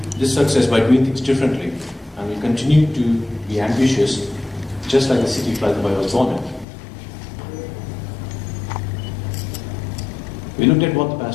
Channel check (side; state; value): right; drops out; at 6.7 s